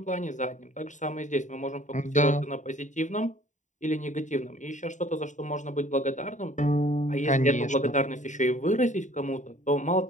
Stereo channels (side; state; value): right; late; 0.36 ms